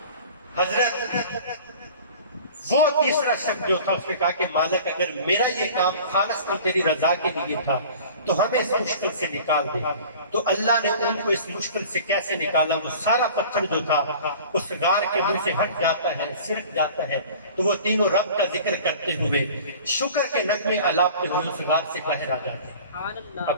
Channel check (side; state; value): both; inverted; correlation -0.44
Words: حضرت وہ تیسرا شخص جو تھا اس نے کہا کہ مالک اگر میرا یہ کام خالص تیری رضا کے لیے تھا تو ہمیں اس مشکل سے نکال دے۔ تو اللہ نے ان کو اس مشکل سے کیسے نکالا؟ وہ سارا پتھر جو تھا اس غار کے منہ سے ہٹ جاتا ہے، سرک جاتا ہے، تو وہ تینوں رب کا ذکر کرتے ہوئے شکر کے نغمے الاپتے ہوئے اس غار سے باہر آ جاتے ہیں۔